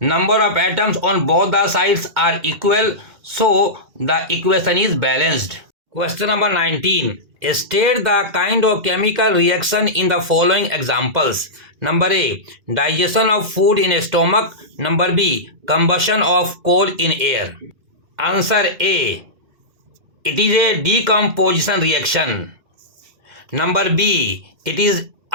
of atoms on both the sides are equal. So the equation is balanced. Question number 19. State the kind of chemical reaction in the following examples. Number A. Digestion of food in a stomach. Number B. Combustion of coal in air. Answer A. It is a decomposition reaction. Number B. It is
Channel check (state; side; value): late; left; 2.1 ms